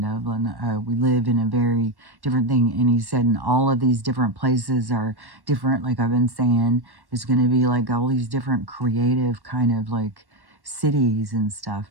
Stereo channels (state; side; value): late; left; 1.1 ms